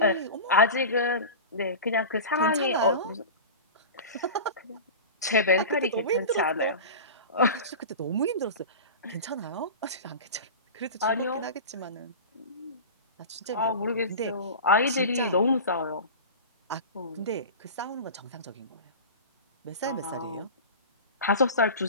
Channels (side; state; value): both; inverted; correlation -0.30